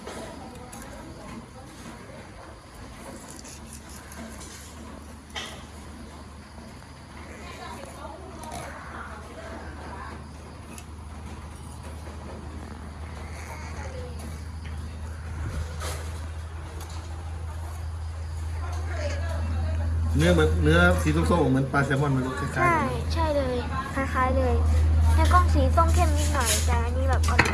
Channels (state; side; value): identical; both; correlation 1.00